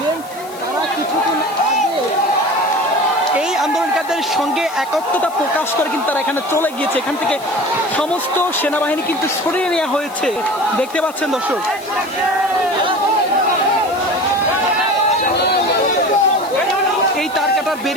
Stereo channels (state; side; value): noise; left; hiss, 20 dB below the sound